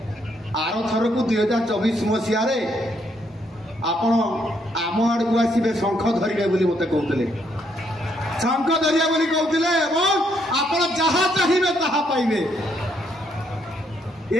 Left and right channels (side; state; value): both; normal; correlation 0.73